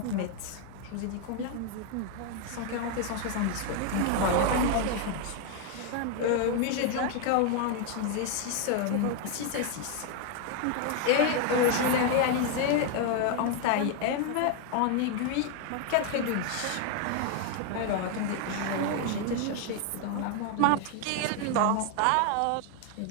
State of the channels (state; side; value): different; both; correlation 0.01